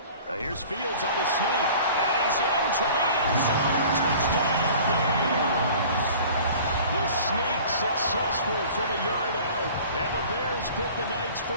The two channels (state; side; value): inverted; both; correlation -0.45